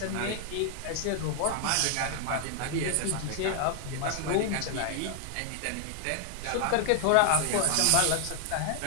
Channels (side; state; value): both; different; correlation 0.00